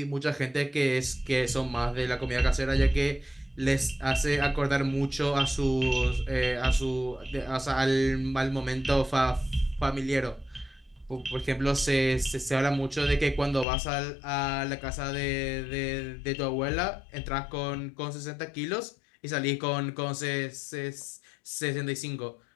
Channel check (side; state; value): right; drops out; at 13.7 s